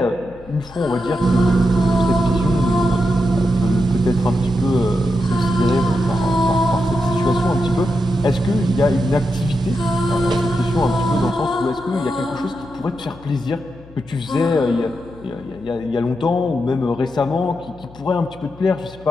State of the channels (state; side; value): noise; left; hum, 22 dB below the sound